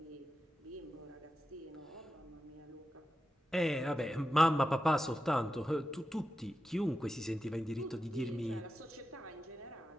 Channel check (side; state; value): both; normal; correlation 0.90